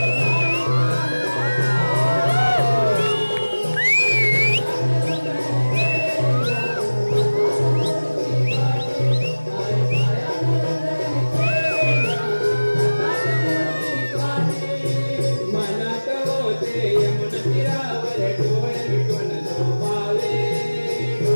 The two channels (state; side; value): inverted; both; correlation -1.00